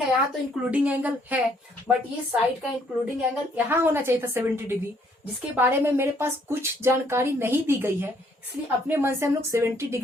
है, यहाँ तो इंक्लूडिंग एंगल है, बट ये साइड का इंक्लूडिंग एंगल यहाँ होना चाहिए था 70 डिग्री, जिसके बारे में मेरे पास कुछ जानकारी नहीं दी गई है, इसलिए अपने मन से हम लोग 70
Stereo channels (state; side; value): normal; both; correlation 0.66